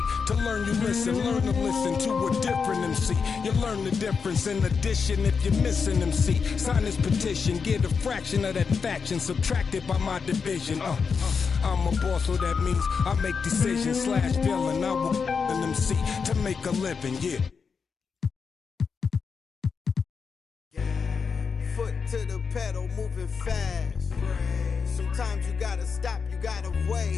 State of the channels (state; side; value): quieter; right; 5.6 dB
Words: To learn you listen, learn to listen to a different MC. You learn the difference in addition if you're missing MC. Sign this petition, get a fraction of that faction subtracted by my division. I'm a boss, so that means I make decisions slash villain. I will an MC to make a living, yeah. To the pedal, moving fast. Sometimes you gotta stop, you gotta